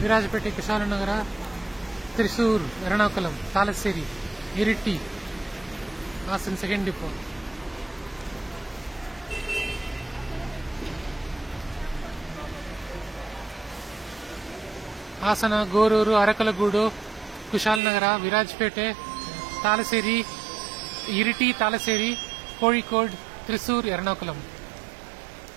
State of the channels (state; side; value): drops out; left; at 17.8 s